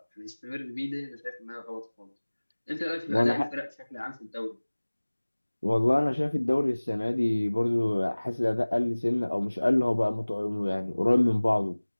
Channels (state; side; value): inverted; both; correlation -1.00